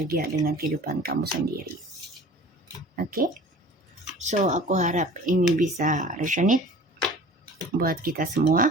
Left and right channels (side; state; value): both; normal; correlation 0.44